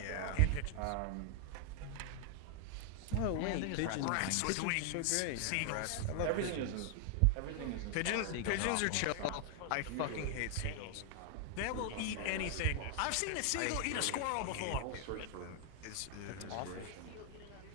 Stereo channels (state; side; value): different; both; correlation 0.00